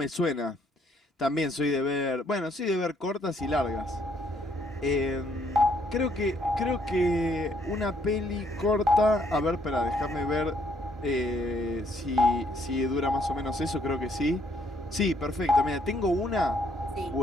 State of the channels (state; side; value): normal; both; correlation 0.68